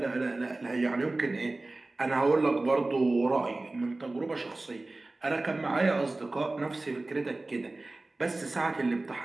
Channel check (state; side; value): quieter; left; 3.0 dB